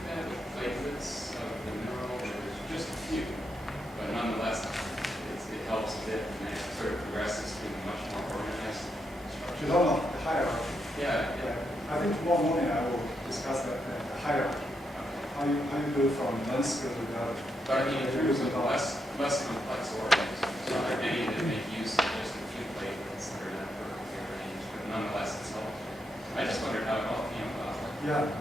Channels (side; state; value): both; normal; correlation 0.81